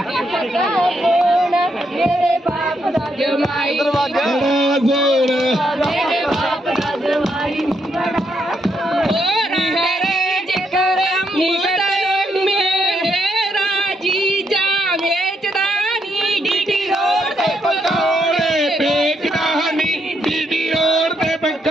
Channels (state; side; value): normal; both; correlation 0.77